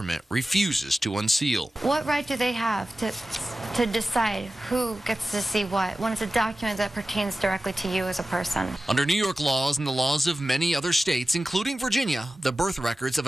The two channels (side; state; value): both; normal; correlation 0.95